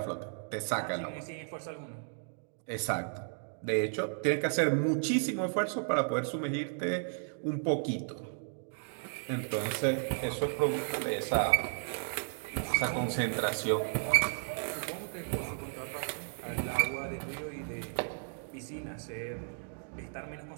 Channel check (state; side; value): silent; left; digital silence